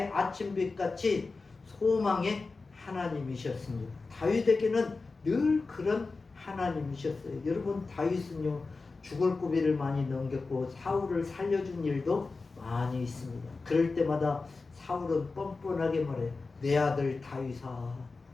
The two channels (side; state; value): right; quieter; 3.9 dB